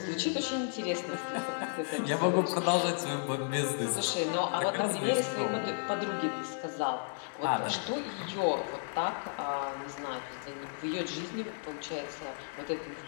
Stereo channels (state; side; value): silent; right; 56 dB below the other